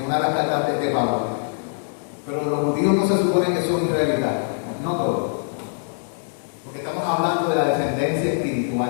una de las cartas de Pablo. Pero los judíos no se supone que son israelitas, no todos. Porque estamos hablando de la descendencia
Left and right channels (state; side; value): silent; right; digital silence